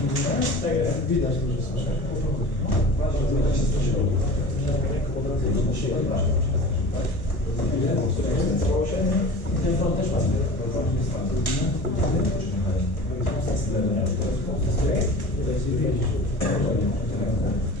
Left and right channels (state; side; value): late; right; 1.2 ms